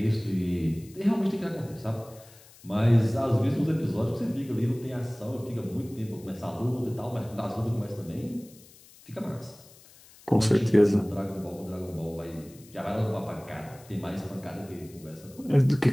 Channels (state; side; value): noise; left; hiss, 24 dB below the sound